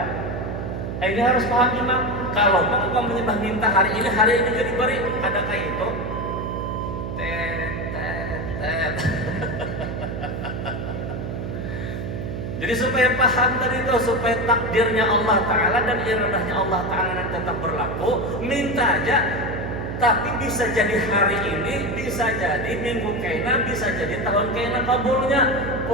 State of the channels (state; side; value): noise; right; hum, 5 dB below the sound